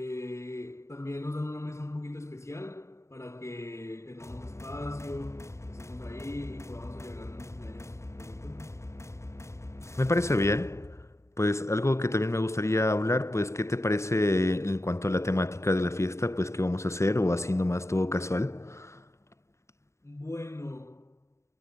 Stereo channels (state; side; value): late; right; 0.14 ms